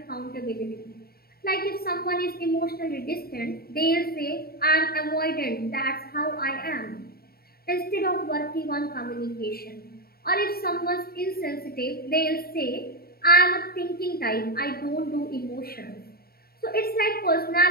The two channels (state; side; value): late; right; 0.44 ms